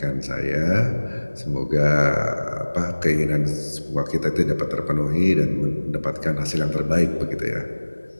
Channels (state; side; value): inverted; both; correlation -1.00